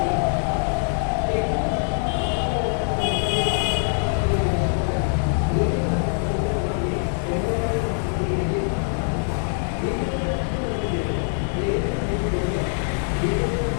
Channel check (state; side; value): silent; right; 63 dB below the other